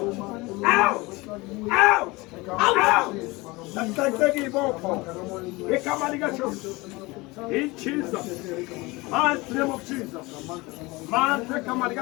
Out! Out! Out! That's like the give up. Get the money got you. In Jesus, man, name of Jesus, man, take the money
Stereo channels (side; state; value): right; quieter; 23.1 dB